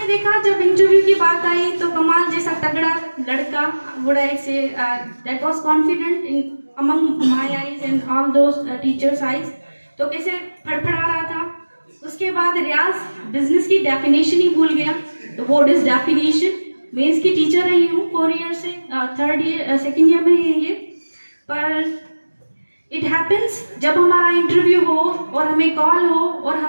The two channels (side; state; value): both; inverted; correlation -1.00